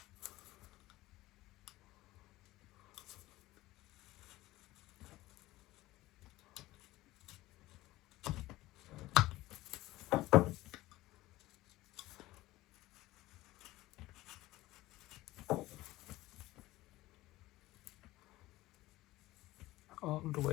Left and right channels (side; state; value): right; quieter; 17.7 dB